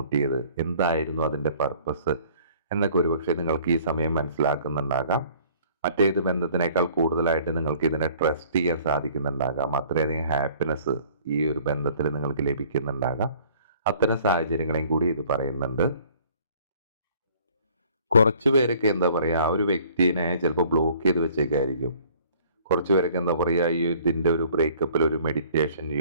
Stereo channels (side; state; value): both; inverted; correlation -0.55